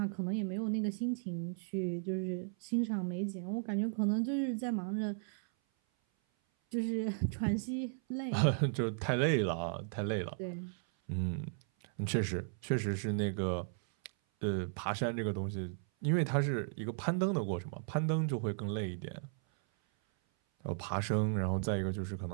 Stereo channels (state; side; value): silent; left; 54 dB below the other